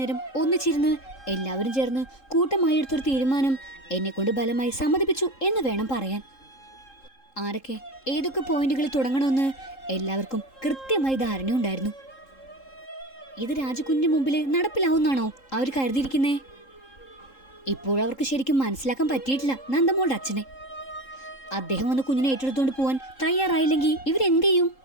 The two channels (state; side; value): late; right; 3.7 ms